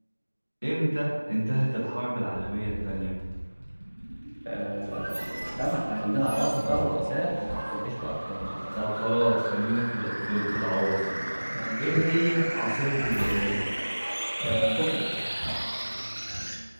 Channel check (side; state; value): both; inverted; correlation -1.00